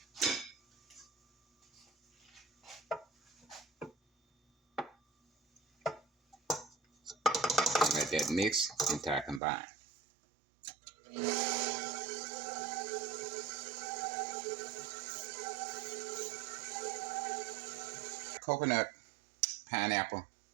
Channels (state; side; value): drops out; left; at 9.4 s